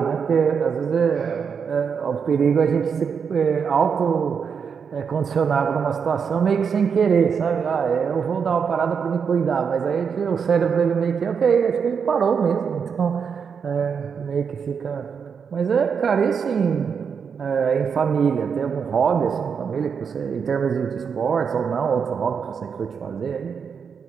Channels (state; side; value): quieter; left; 6.5 dB